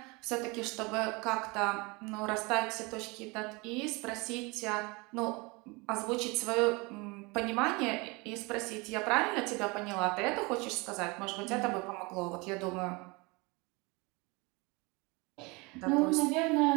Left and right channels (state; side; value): quieter; left; 26.8 dB